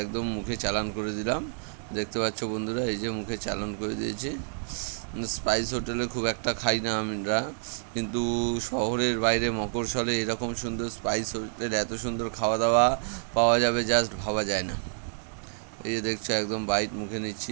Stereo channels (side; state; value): left; silent; 59 dB below the other